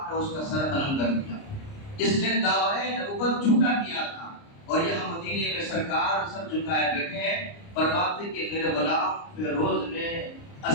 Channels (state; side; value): late; right; 29 ms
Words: نے اس کا سر قلم کر دیا۔ اس نے دعوی نبوت جھوٹا کیا تھا، اور یہاں مدینے میں سرکار سر جھکائے بیٹھے ہیں، فرماتے کہ میرے غلام فیروز نے